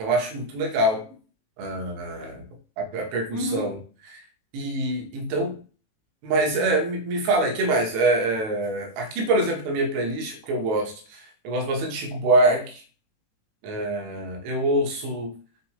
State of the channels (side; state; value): left; late; 18 ms